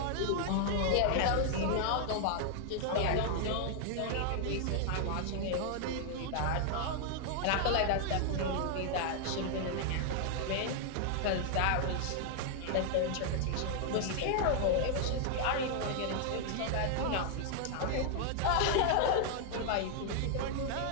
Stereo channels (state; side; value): different; both; correlation 0.00